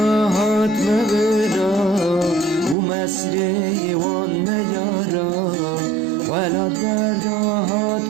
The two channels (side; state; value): left; drops out; at 2.8 s